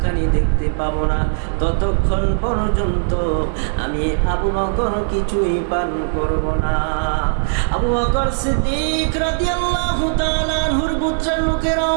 খানি দেখতে পাবো না, ততক্ষণ পর্যন্ত আমি আবু বকর কিছুই পান করব না। আবু বকর সিদ্দিক রাদিয়াল্লাহু তাআলা আনহুর গোত্রের লোকেরাও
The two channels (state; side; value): silent; left; digital silence